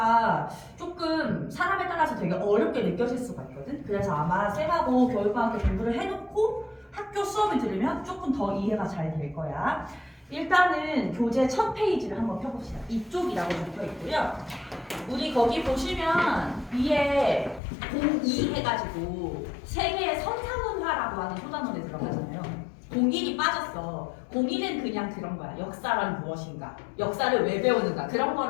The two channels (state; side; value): drops out; right; at 17.6 s